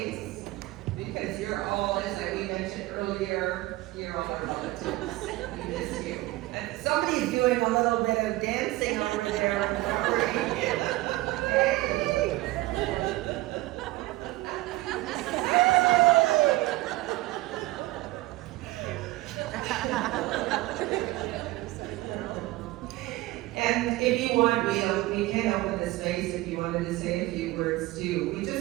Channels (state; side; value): quieter; left; 19.0 dB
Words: because you're all, as we mentioned earlier, you're all our relatives. We miss you. And somebody's doing a little bit of dancing over there. Hey. And if you want, we can open the space if you wanted to say a few words too. We